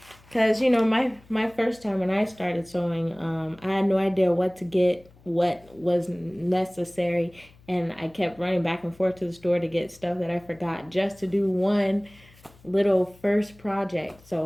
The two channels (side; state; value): left; noise; hum, 26 dB below the sound